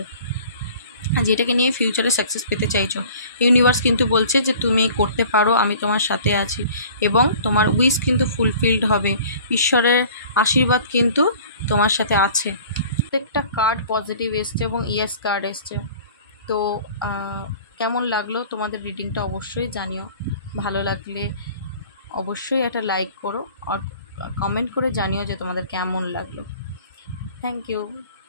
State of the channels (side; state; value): both; inverted; correlation -0.47